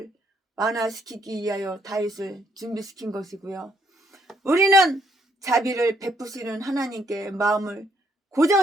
완화시키기 위하여 다윗을 준비시킨 것이고요. 우리는 자비를 베푸시는 하나님께 마음을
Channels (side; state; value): both; normal; correlation 0.71